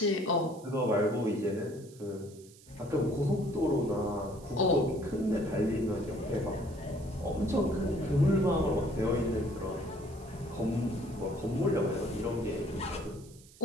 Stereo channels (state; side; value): noise; right; hiss, 23 dB below the sound